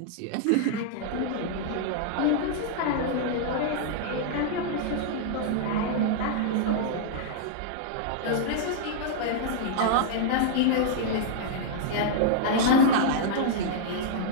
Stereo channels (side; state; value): both; different; correlation -0.01